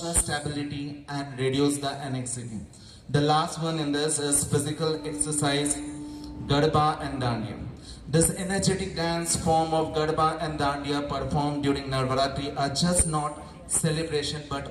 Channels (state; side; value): identical; both; correlation 1.00